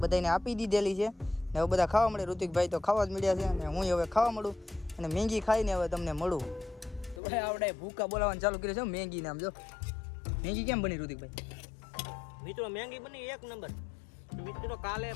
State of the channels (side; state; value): right; drops out; at 7.2 s